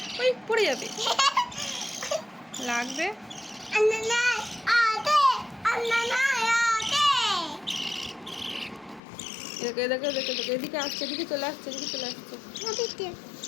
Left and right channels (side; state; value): right; drops out; at 9.0 s